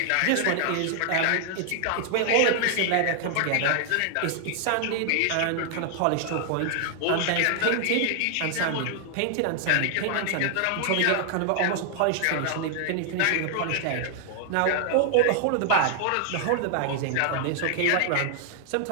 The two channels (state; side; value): different; both; correlation -0.01